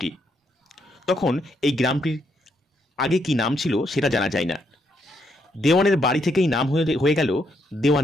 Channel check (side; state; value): both; normal; correlation 0.76